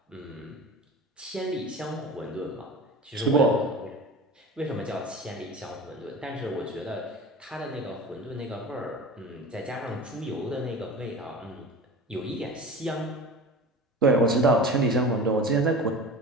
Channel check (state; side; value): normal; both; correlation 0.34